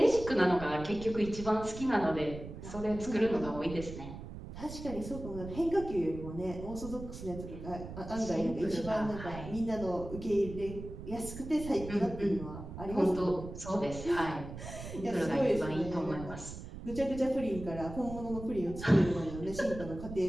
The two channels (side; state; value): right; noise; rumble, 11 dB below the sound